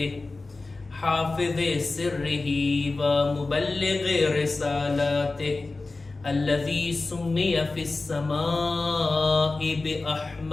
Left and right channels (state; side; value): quieter; right; 3.5 dB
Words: حافظ سره ومبلغ رسالاته الذي سمي في السماء